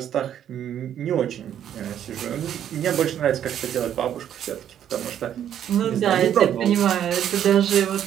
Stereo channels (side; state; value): left; quieter; 10.0 dB